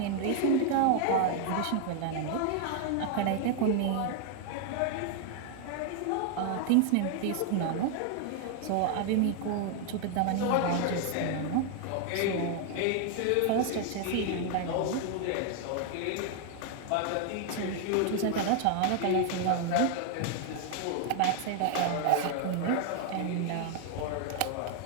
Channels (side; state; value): both; different; correlation 0.00